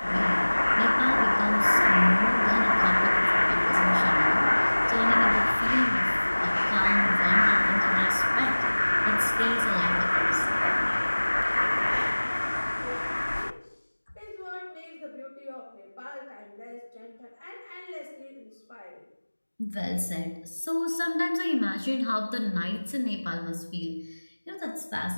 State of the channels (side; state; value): both; inverted; correlation -1.00